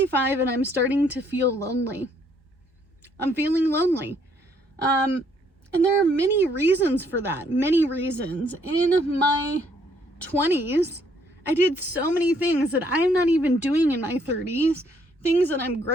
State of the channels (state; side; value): normal; both; correlation 0.67